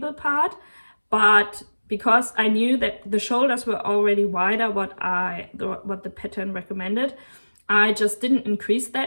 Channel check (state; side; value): inverted; both; correlation -1.00